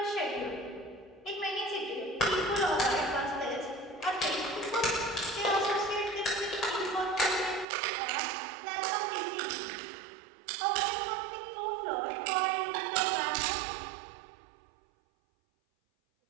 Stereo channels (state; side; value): drops out; left; at 7.7 s